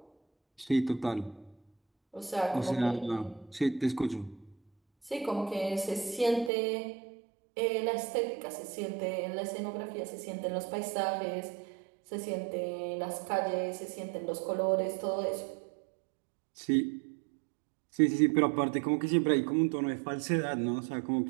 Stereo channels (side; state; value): left; drops out; at 6.5 s